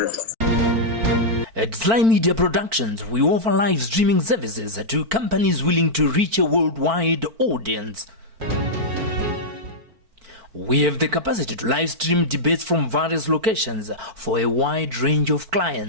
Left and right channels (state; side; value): late; left; 4.5 ms